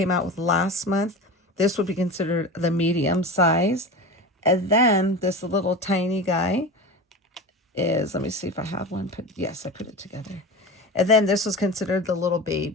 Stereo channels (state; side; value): normal; both; correlation 0.29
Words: out with last month, this would be considered the medium size. And then this little tiny guy is, let me see if I have one. Yes, I put it together. And then this was considered the little